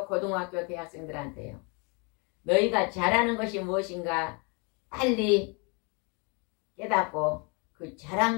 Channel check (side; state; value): right; quieter; 32.5 dB